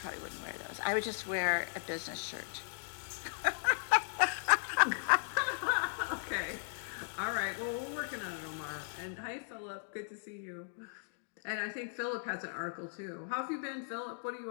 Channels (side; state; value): right; silent; digital silence